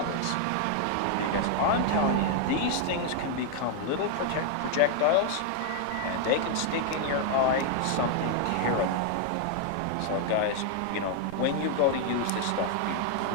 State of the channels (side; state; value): both; different; correlation 0.00